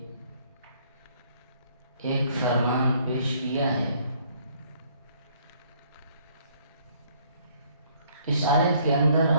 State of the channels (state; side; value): inverted; both; correlation -0.63